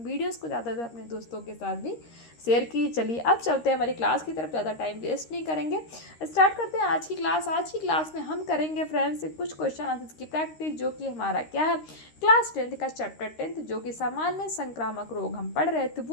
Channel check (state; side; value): late; right; 13 ms